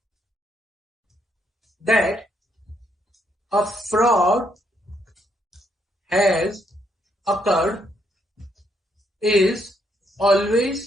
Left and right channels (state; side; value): normal; both; correlation 0.74